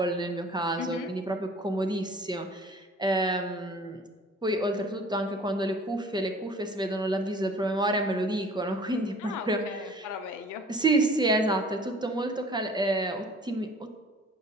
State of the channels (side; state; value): both; normal; correlation 0.49